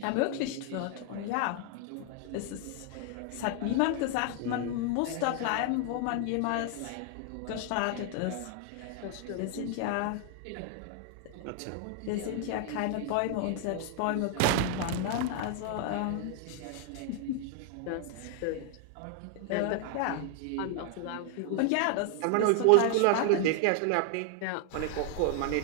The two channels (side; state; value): both; different; correlation 0.00